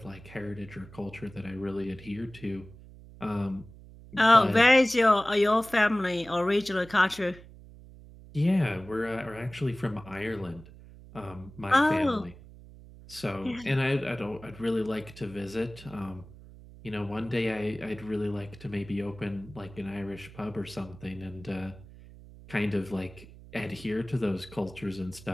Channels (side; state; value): right; noise; hum, 19 dB below the sound